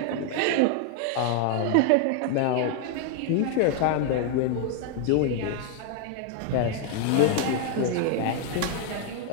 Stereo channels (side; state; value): both; different; correlation 0.00